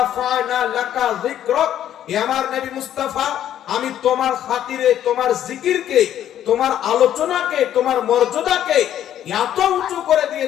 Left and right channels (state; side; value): quieter; right; 11.0 dB